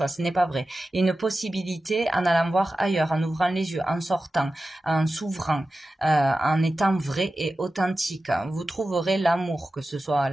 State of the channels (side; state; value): both; normal; correlation 0.94